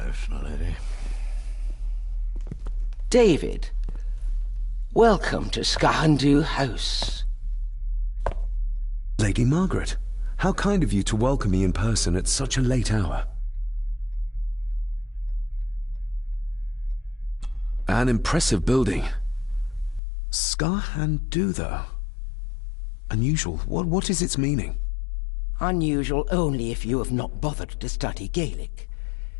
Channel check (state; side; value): drops out; right; at 20.0 s